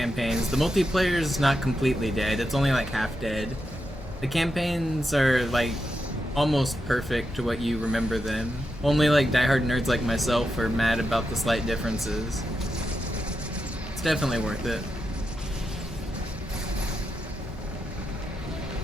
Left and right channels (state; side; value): normal; both; correlation 0.86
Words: The multiplayer is not completely dead, it's only like half dead. The campaigns are like almost perfect to what you remember them. Only like diehard nerds like myself are mad about the slight differences. It's definitely worth it.